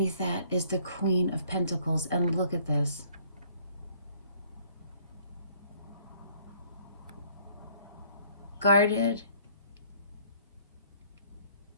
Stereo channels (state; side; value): inverted; both; correlation -0.60